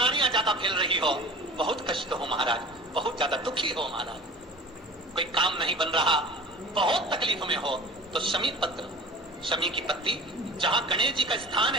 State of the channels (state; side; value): normal; both; correlation 0.39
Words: ज्यादा फैल रही हो, बहुत कष्ट हो महाराज, बहुत ज्यादा दुखी हो महाराज, कोई काम नहीं बन रहा, बहुत तकलीफ में हो, तो शमी पत्र, शमी की पत्ती, जहां गणेश जी का स्थान